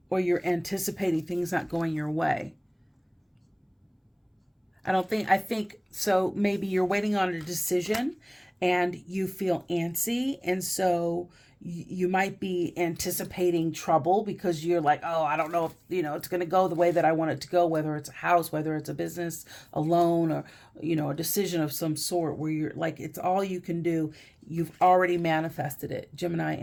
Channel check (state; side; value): identical; both; correlation 1.00